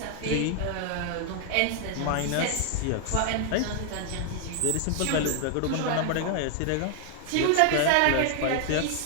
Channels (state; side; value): different; both; correlation 0.00